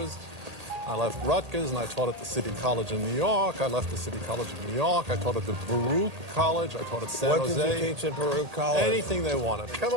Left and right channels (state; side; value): late; left; 1.8 ms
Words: I left Rutgers, and I taught at the City College in New York. I left the City College of New York. I taught at the Baruch College. I taught at San Jose. What did you teach at Baruch College? Anything they wanted. Come